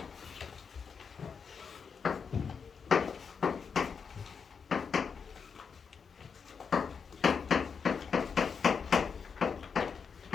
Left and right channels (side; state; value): right; quieter; 6.1 dB